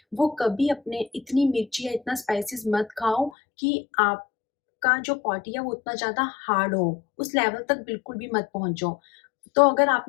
वो कभी अपने इतनी मिर्ची या इतना स्पाइसेस मत खाओ कि आपका जो बॉडी है वो उतना ज़्यादा हार्ड हो, उस लेवल तक बिल्कुल भी मत पहुँचो। तो अगर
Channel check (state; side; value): drops out; right; at 3.3 s